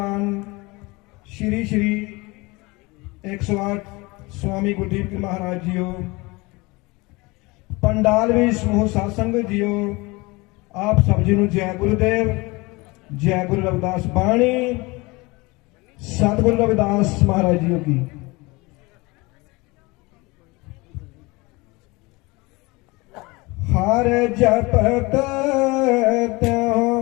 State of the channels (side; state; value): right; quieter; 24.2 dB